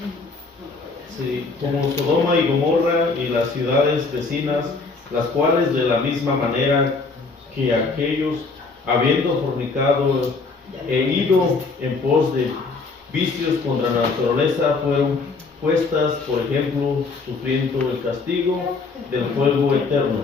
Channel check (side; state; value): right; quieter; 4.1 dB